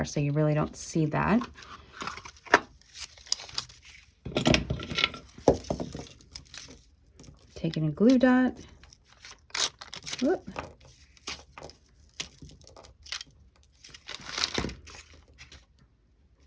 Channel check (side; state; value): both; identical; correlation 1.00